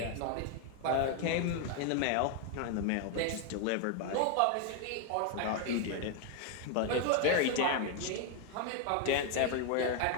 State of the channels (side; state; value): both; different; correlation 0.01